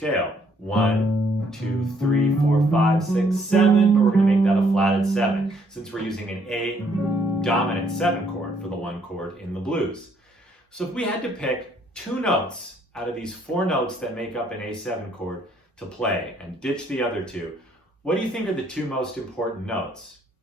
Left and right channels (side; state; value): both; normal; correlation 0.67